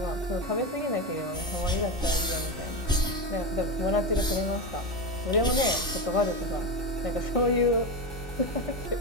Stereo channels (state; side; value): normal; both; correlation 0.16